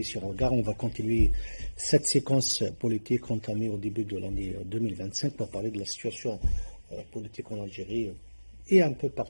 Regard. On va continuer cette séquence politique entamée au début de l'année 2025 pour parler de la situation politique en Algérie et un peu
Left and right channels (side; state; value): both; inverted; correlation -1.00